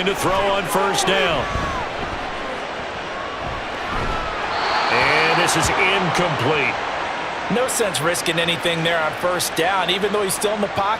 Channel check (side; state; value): both; identical; correlation 1.00